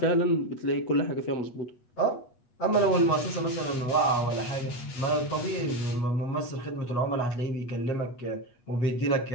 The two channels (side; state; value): right; late; 8.2 ms